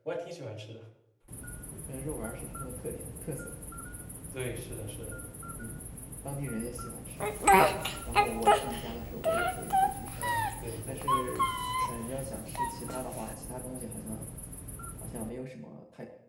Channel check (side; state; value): both; identical; correlation 1.00